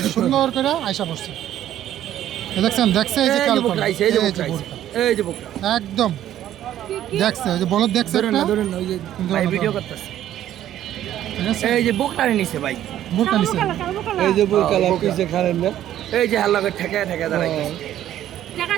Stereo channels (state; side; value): quieter; left; 12.0 dB